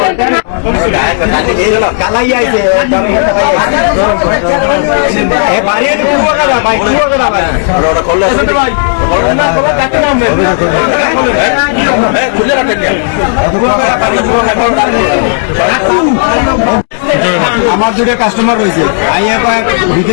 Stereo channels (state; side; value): silent; right; digital silence